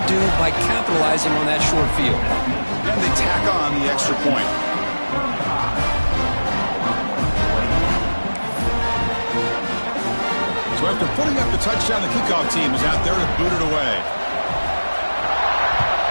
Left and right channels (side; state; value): both; inverted; correlation -1.00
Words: do by capitalizing on that short field. And they tack on the extra point. So after putting up the touchdown, the kickoff team is out there to boot it away.